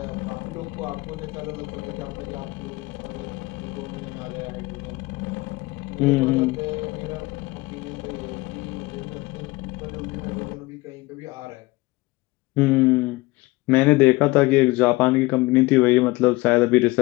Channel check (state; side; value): quieter; right; 21.7 dB